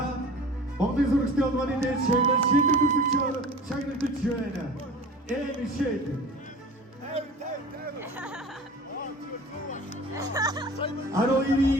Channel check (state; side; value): normal; both; correlation 0.40